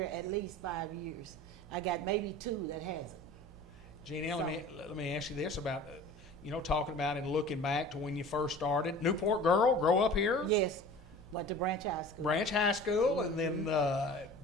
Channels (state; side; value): normal; both; correlation 0.42